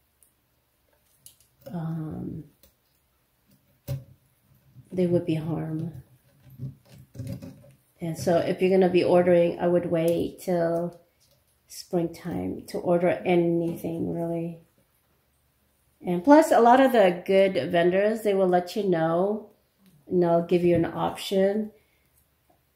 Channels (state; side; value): identical; both; correlation 1.00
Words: harm. And so if you're going to be ordering, I would wait till springtime to order anything really. And plus, a lot of the good vendors, they will let you know, and they'll give you an option